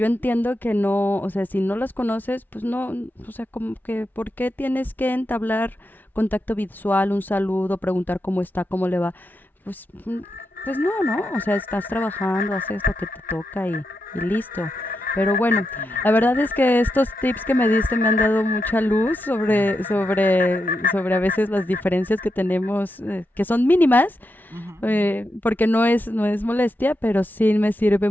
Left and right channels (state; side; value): normal; both; correlation 0.86